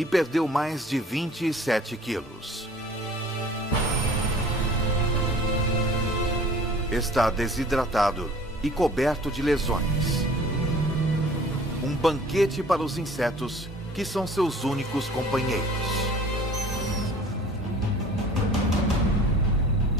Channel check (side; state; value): both; normal; correlation 0.49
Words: perdeu mais de 27 quilos. Está desidratado e coberto de lesões. Um banquete para os insetos, que são seus únicos companheiros.